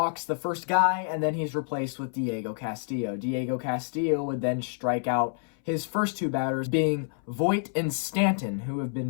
the first guy, and then he's replaced with Diego Castillo. Diego Castillo would then strike out his first 2 batters, being Voit and Stanton, who have been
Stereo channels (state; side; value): silent; right; 59 dB below the other